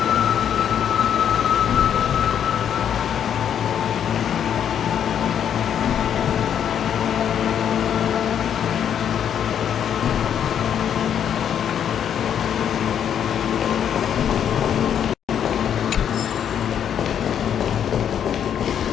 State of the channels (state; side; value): quieter; right; 9.0 dB